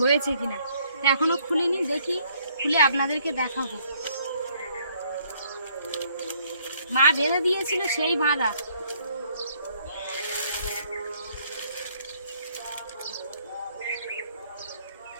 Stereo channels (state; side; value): inverted; both; correlation -0.65